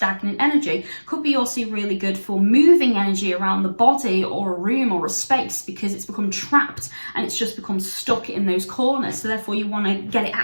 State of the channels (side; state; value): both; inverted; correlation -1.00